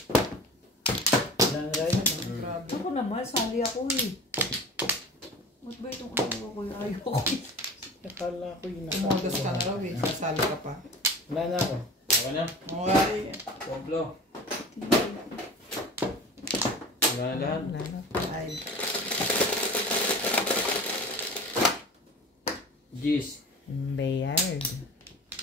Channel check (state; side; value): normal; both; correlation 0.37